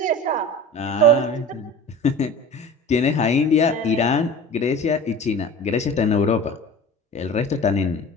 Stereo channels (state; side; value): normal; both; correlation 0.37